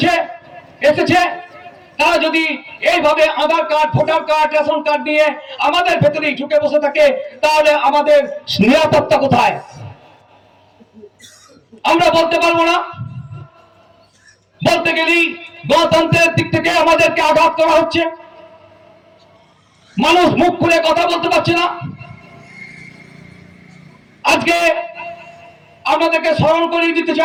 এসেছে তারা যদি এইভাবে Aadhaar card voter card ration card নিয়ে আমাদের ভেতরেই ঢুকে বসে থাকে তাহলে আমাদের নিরাপত্তা কোথায়? আমরা বলতে পারবো না। বলতে গেলেই গণতন্ত্রের দিক থেকে আমাদেরকে আঘাত করা হচ্ছে। মানুষ মুখ খুলে কথা বলতে পারছে না। আজকে আপনাদেরকে স্মরণ করিয়ে দিতে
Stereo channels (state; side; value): identical; both; correlation 1.00